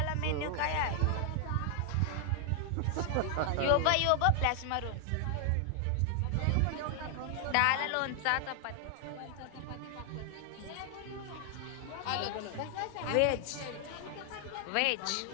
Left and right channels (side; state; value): both; different; correlation 0.00